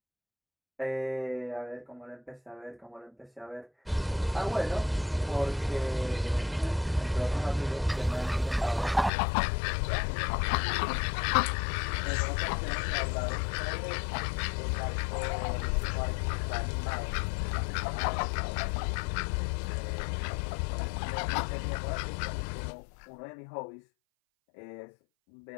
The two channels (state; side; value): drops out; right; at 9.1 s